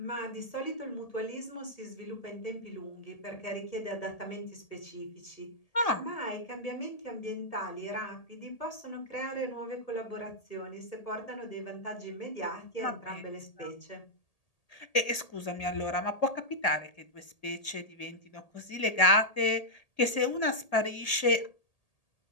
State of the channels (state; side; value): late; right; 1.8 ms